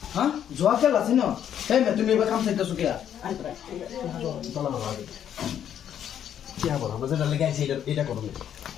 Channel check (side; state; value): right; quieter; 9.6 dB